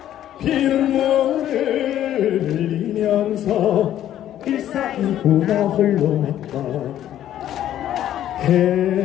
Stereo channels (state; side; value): quieter; right; 11.7 dB